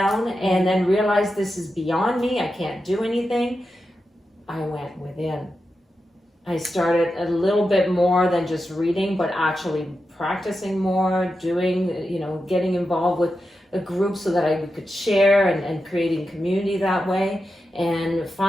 and then realized this is beyond me, I can't do anything. I went within. I started a little bit more than just reading, but actually practicing more, doing, getting involved with a group so that I could share and creating community that way. And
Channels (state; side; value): normal; both; correlation 0.89